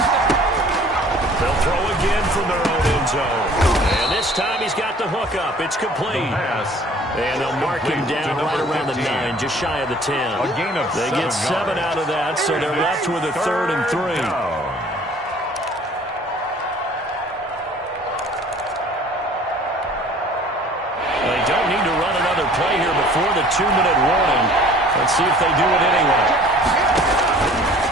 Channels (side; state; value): both; normal; correlation 0.51